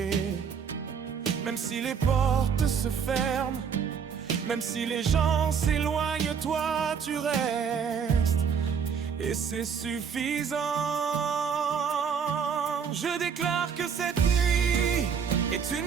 Même si les portes se ferment, même si les gens s'éloignent, toi tu restes. Et c'est suffisant. Je déclare que cette nuit est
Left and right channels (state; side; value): quieter; left; 6.7 dB